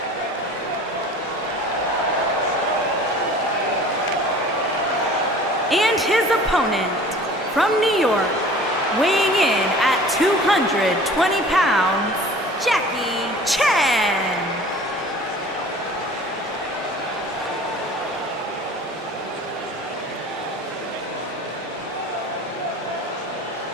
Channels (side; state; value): both; normal; correlation 0.45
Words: And his opponent from New York, weighing in at 220 pounds, Jackie Chan.